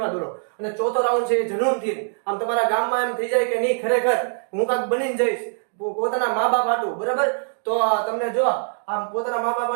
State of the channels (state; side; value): silent; left; digital silence